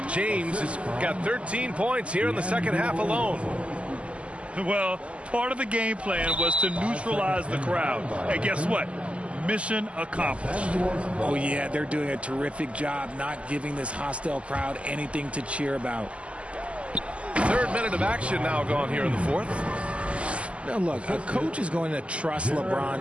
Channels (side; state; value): left; late; 0.058 ms